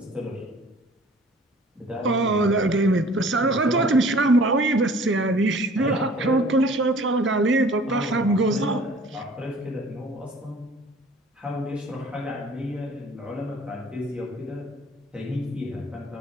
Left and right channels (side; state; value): both; normal; correlation 0.50